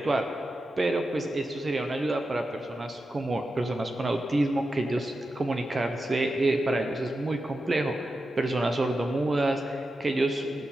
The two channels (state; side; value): normal; both; correlation 0.90